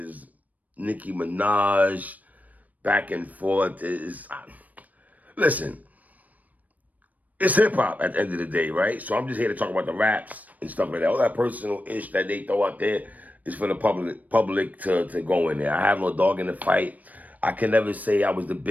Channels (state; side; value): late; left; 0.076 ms